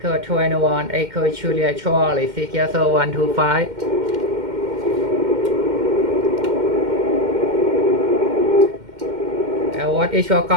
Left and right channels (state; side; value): late; left; 2.1 ms